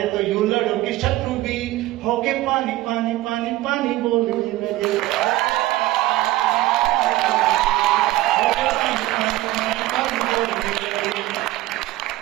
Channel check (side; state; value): left; quieter; 17.0 dB